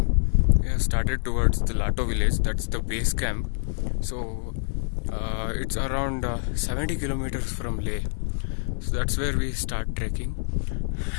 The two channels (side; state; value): right; silent; digital silence